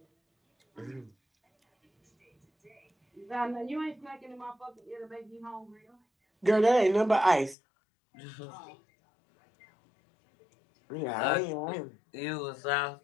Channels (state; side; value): drops out; right; at 7.6 s